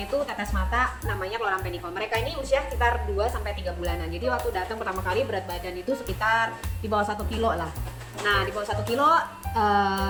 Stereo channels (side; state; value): both; identical; correlation 1.00